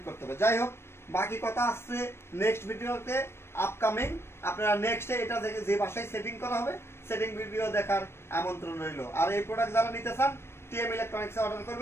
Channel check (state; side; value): late; right; 0.12 ms